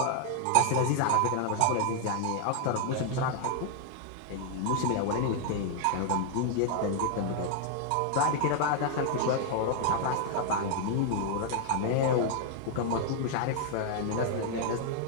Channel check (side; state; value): both; different; correlation 0.00